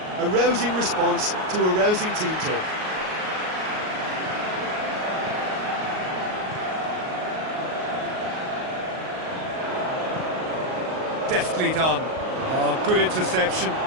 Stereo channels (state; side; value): late; left; 38 ms